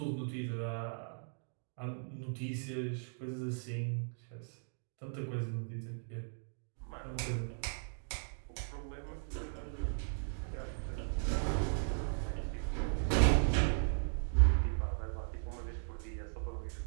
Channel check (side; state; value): left; silent; digital silence